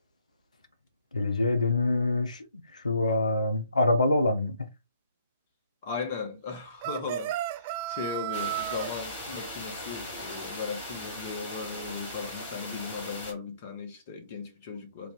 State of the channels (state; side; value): inverted; both; correlation -0.64